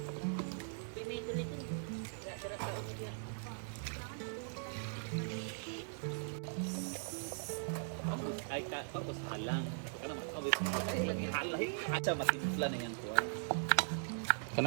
Ay ka, tapos halang. Kana makawis. Halay. Acha matimpla na yan ko.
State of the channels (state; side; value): silent; left; digital silence